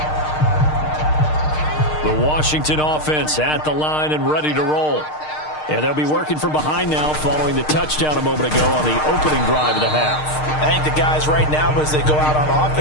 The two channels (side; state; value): right; late; 6.5 ms